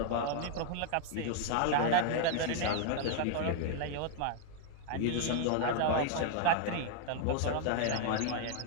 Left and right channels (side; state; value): both; different; correlation 0.00